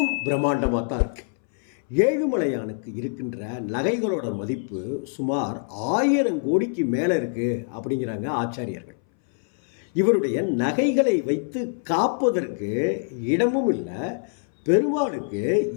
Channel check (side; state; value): right; silent; 61 dB below the other